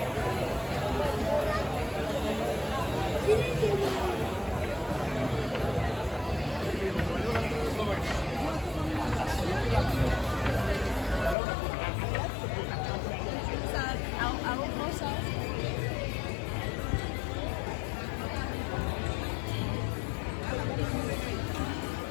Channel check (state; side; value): drops out; right; at 11.4 s